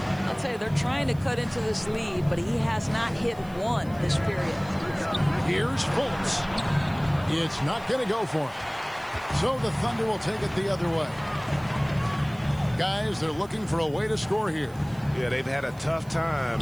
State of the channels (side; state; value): right; noise; hiss, 25 dB below the sound